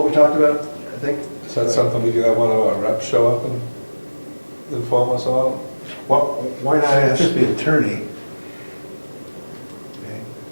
we talked about, I think? Is that something we could have one of our reps show up and inform us on? Well, why not ask the attorney? Okay.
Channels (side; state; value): both; inverted; correlation -1.00